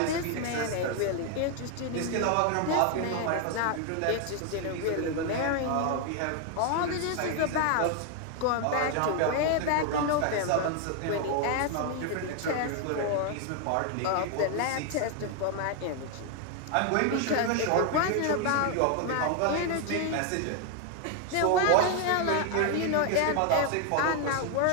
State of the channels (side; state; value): both; different; correlation 0.01